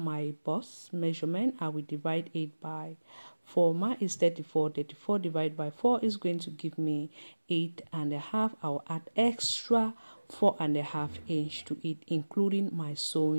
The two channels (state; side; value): inverted; both; correlation -1.00